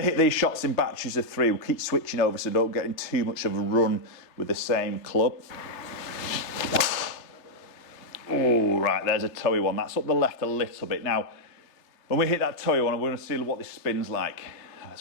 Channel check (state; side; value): late; right; 3.3 ms